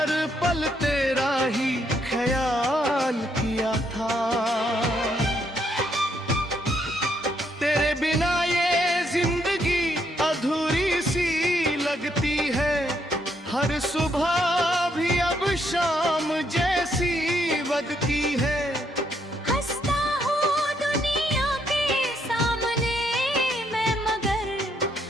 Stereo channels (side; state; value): both; normal; correlation 0.74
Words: पल तेरा ही ख्याल किया था। तेरे बिना ये जिंदगी अधूरी सी लगती है, हर सुबह भी अब शाम जैसी लगती है। हंसता हूँ दुनिया के सामने मैं, मगर